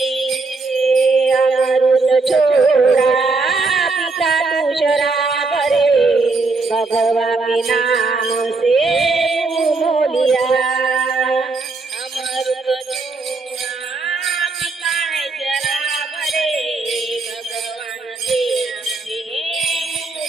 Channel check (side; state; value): left; quieter; 3.8 dB